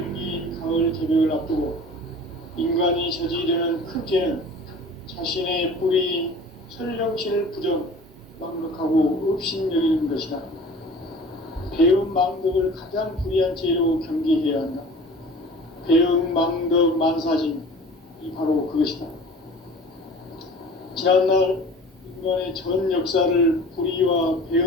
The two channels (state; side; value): normal; both; correlation 0.43